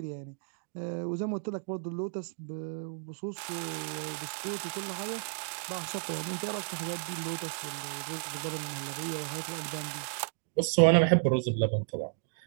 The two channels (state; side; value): silent; left; digital silence